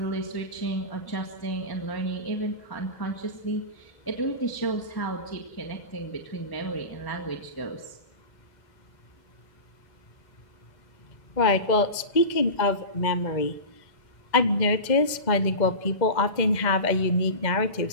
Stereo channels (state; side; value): late; right; 2.0 ms